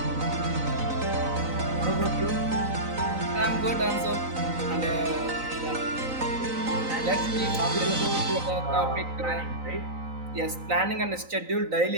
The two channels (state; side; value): late; left; 3.9 ms